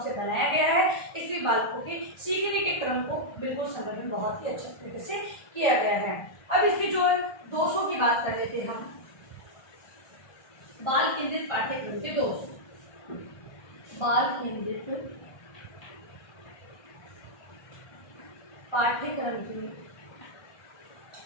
से बनाया गया है, इसलिए बालकों के सीखने के क्रम को बिल्कुल संगठन बहुत ही अच्छे तरीके से किया गया है। अब इसके जो दोषों की बात कर लेते हैं हम। बाल केंद्रित पाठ्यक्रम के दोष। बाल केंद्रित पाठ्यक्रम के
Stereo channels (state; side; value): late; right; 1.4 ms